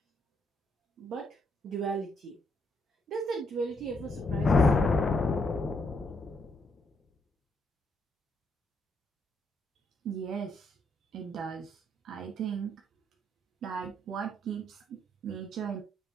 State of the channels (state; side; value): normal; both; correlation 0.75